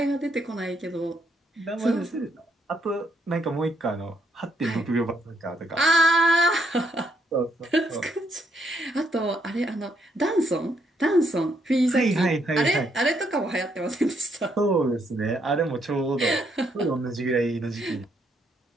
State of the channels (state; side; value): normal; both; correlation 0.74